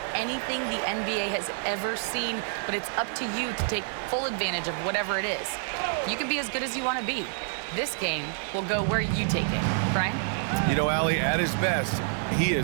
anything the NBA has ever seen, but it's up to you to take full advantage of whatever it is. You can be as good as you want to be. This game will go where you take it. Brian? You know, Allie, at his best, he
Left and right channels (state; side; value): silent; left; digital silence